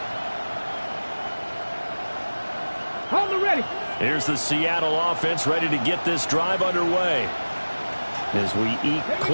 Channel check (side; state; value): both; inverted; correlation -1.00